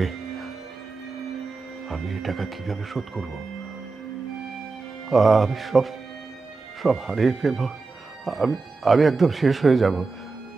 আমি এই টাকা কিভাবে শোধ করব? আমি সব সব হারিয়ে ফেলবো। আমি একদম শেষ হয়ে যাব।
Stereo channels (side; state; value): left; quieter; 4.0 dB